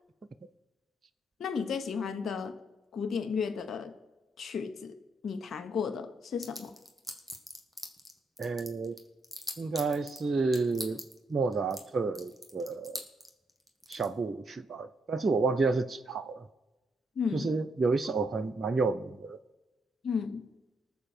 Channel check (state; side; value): normal; both; correlation 0.75